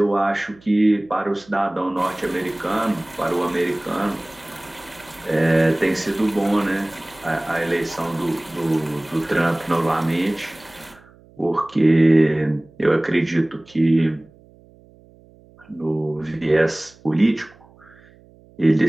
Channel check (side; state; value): right; noise; hum, 27 dB below the sound